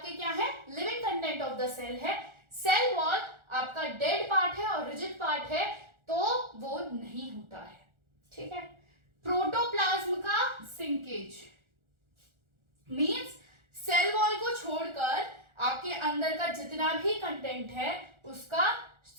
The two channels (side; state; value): left; late; 1.4 ms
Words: क्या है, living content of the cell है। सेल वॉल आपका डेड पार्ट है और रिजिड पार्ट है, तो वो नहीं होता है, ठीक है। प्रोटोप्लाज्म का सिंकेज मीन्स सेल वॉल को छोड़कर आपके अंदर का जितना भी कंटेंट है उसका